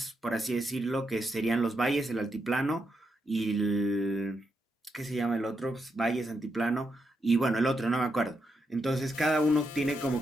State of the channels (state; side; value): normal; both; correlation 0.83